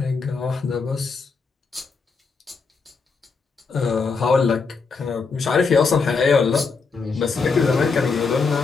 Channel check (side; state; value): right; quieter; 4.8 dB